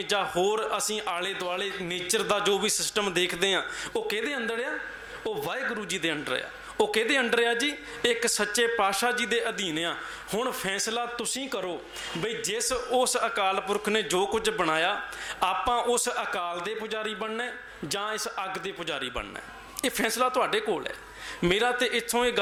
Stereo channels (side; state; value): both; identical; correlation 1.00